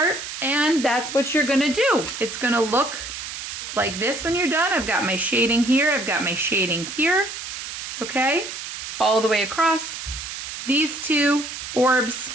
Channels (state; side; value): noise; right; hiss, 8 dB below the sound